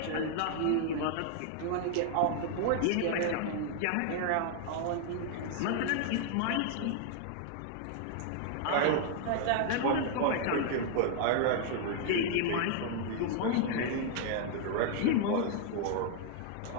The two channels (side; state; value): both; different; correlation 0.00